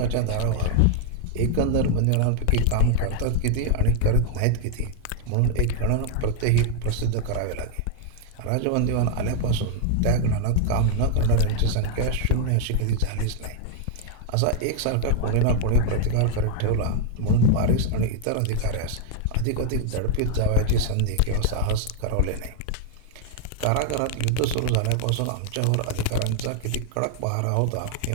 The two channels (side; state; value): both; different; correlation 0.00